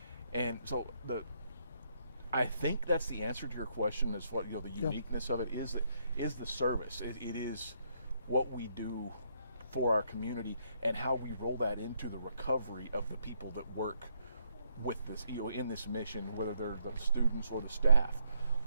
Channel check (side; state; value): both; inverted; correlation -0.74